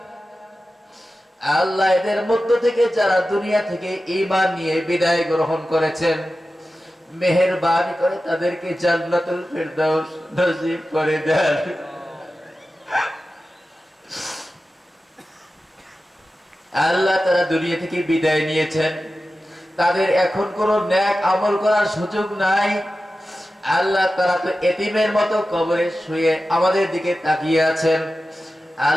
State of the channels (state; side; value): normal; both; correlation 0.94